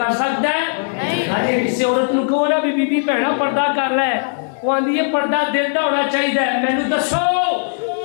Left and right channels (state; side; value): silent; right; 67 dB below the other